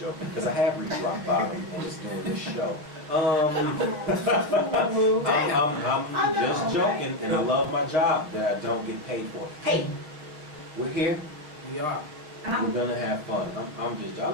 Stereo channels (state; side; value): late; left; 6.5 ms